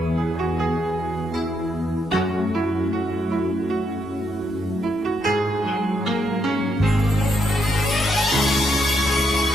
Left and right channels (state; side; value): normal; both; correlation 0.78